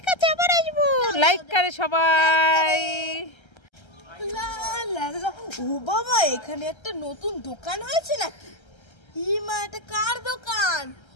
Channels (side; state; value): right; late; 1.3 ms